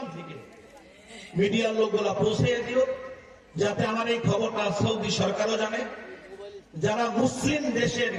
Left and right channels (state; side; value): identical; both; correlation 1.00